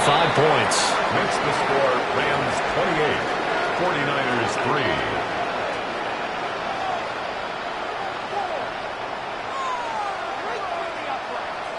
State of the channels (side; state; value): both; identical; correlation 1.00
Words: points. Makes the score Rams 28, 49ers 3.